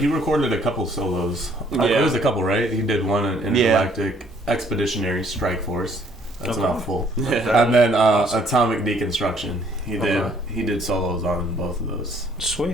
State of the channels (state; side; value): normal; both; correlation 0.62